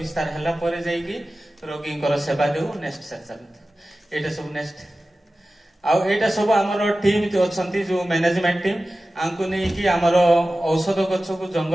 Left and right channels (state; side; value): normal; both; correlation 0.95